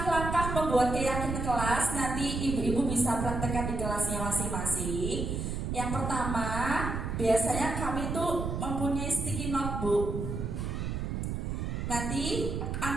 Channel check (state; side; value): noise; right; rumble, 3 dB below the sound